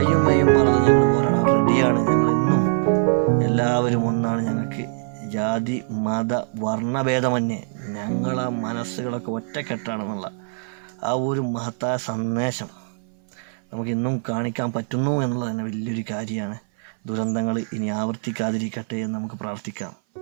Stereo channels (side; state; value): left; silent; 58 dB below the other